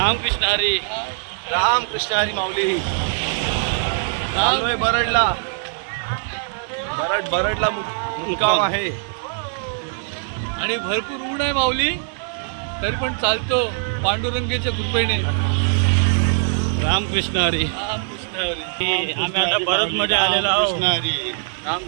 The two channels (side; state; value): left; silent; digital silence